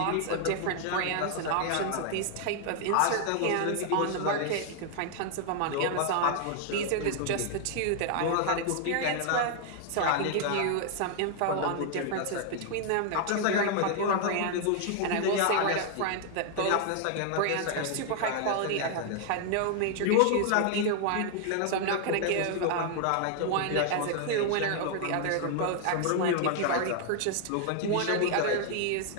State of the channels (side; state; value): both; different; correlation 0.00